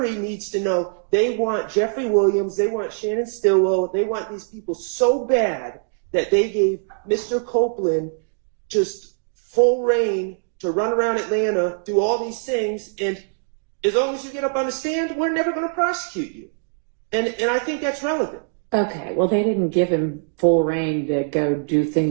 needs to know they want Jeffrey Williams, they want Shannon Stillwell, they want these people so bad that they gave Mr. Copeland just full reign to run around Atlanta, do all these things, and as long as you get up on the stand, we're never going to prosecute you. And I think that's relevant. Okay, well, they didn't give him full reign to go do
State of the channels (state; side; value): silent; left; digital silence